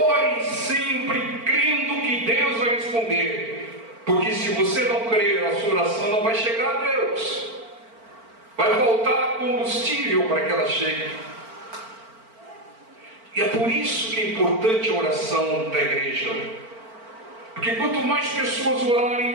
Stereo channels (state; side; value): late; left; 4.4 ms